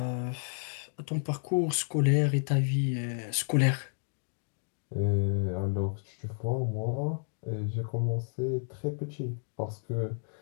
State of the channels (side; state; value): right; silent; 57 dB below the other